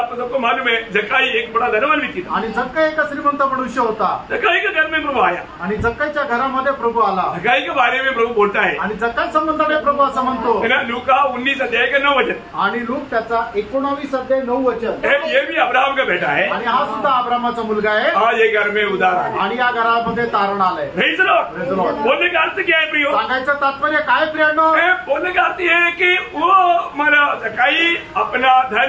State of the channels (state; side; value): identical; both; correlation 1.00